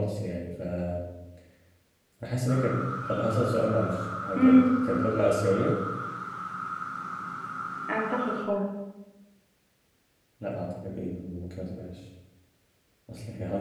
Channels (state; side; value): identical; both; correlation 1.00